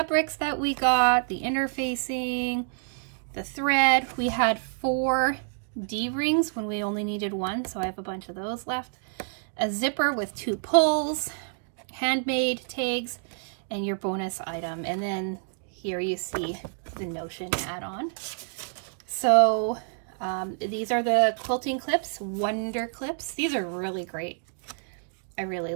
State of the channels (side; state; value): left; silent; digital silence